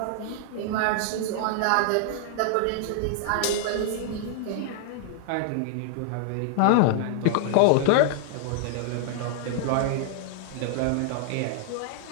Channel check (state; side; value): different; both; correlation 0.00